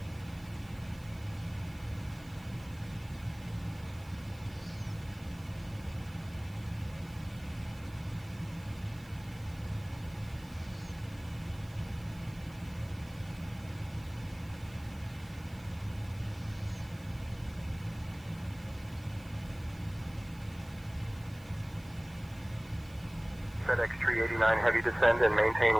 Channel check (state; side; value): noise; right; hiss, 24 dB below the sound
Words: FedEx 389 heavy, descend and maintain